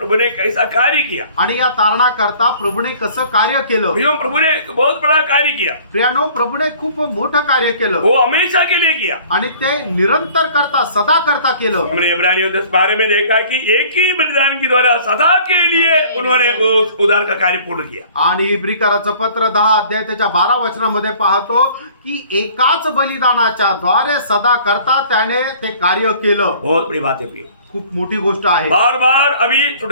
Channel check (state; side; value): inverted; both; correlation -0.51